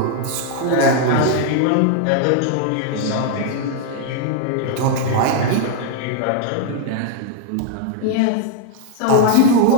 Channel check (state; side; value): different; both; correlation 0.00